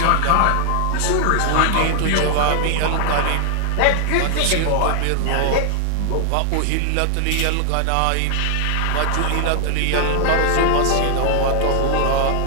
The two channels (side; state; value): both; different; correlation 0.00